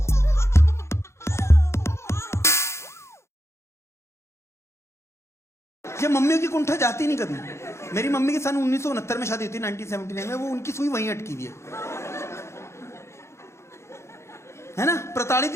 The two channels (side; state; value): right; late; 0.13 ms